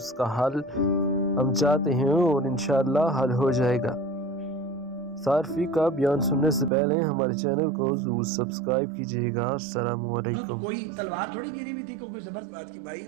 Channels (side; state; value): left; drops out; at 6.7 s